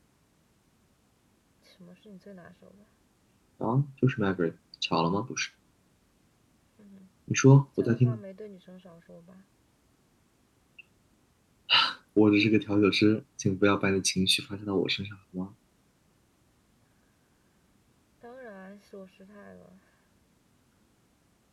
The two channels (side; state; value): both; identical; correlation 1.00